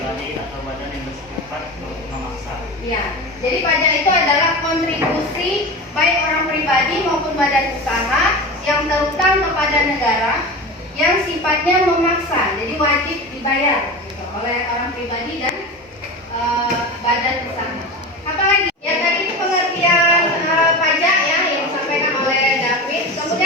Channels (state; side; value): normal; both; correlation 0.28